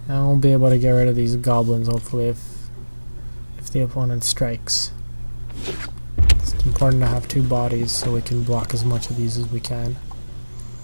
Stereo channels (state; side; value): inverted; both; correlation -1.00